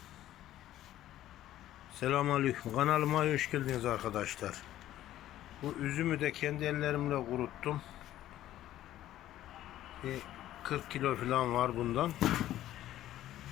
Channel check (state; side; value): quieter; right; 13.4 dB